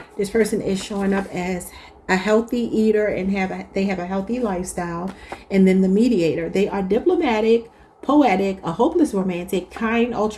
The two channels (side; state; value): both; identical; correlation 1.00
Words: This person is showing up as a healthy eater and they have a healthy lifestyle. And then the mediator. They are diplomatic, poetic, a hopeless romantic, kind,